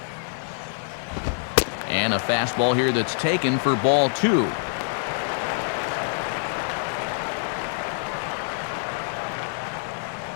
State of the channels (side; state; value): right; silent; 61 dB below the other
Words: And a fastball here that's taken for ball 2.